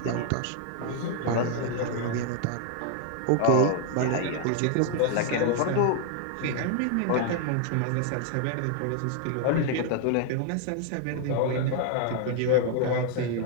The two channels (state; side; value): different; both; correlation 0.00